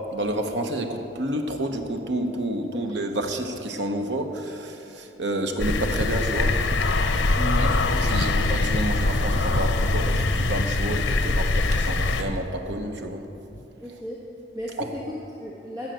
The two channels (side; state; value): both; normal; correlation 0.59